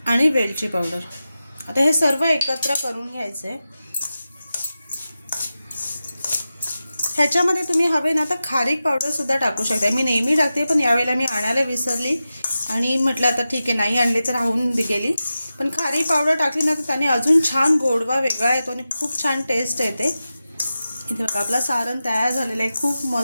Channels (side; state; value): both; inverted; correlation -0.93